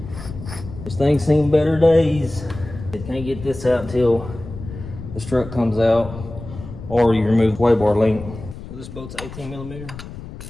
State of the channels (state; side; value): noise; left; rumble, 12 dB below the sound